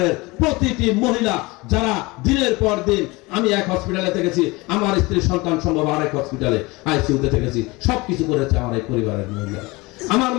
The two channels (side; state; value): right; quieter; 23.5 dB